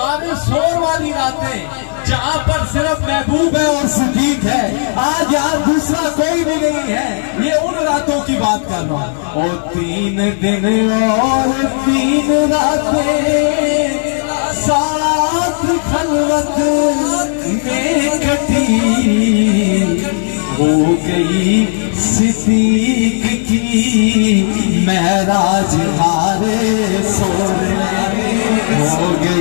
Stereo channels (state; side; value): silent; right; digital silence